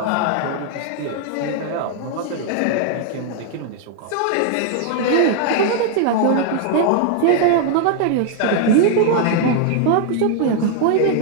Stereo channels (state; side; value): different; both; correlation 0.00